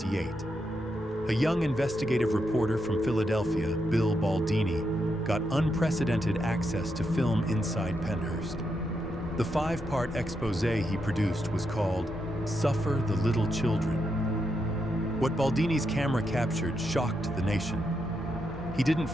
A young investigative reporter from Philadelphia, Bill Baldini, got unprecedented access to film inside Pennhurst. The 5-part expose he produced was called "Suffer the Little Children." What Baldini's camera captured shocked the nation. He didn't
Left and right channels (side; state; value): both; normal; correlation 0.83